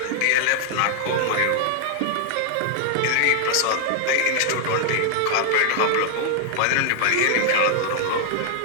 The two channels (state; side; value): different; both; correlation 0.00